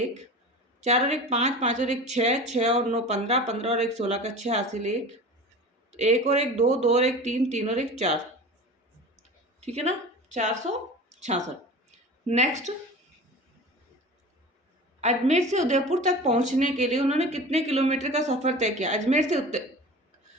4 और 1 5, 5 और 1 6, 6 और 9 15, 15 और 1 16 का 6 हासिल 1, 1 और 1 2, 2 और 1 3, 3 और 1 4, ठीक है ना, 466। नेक्स्ट, अजमेर से उदयपुर तक पहुंचने के लिए उन्होंने कितने किलोमीटर का सफर तय किया।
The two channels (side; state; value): both; normal; correlation 0.36